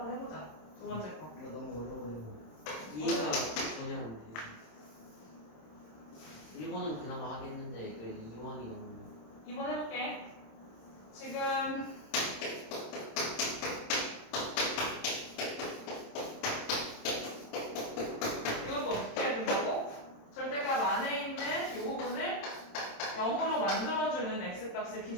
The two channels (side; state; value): right; late; 27 ms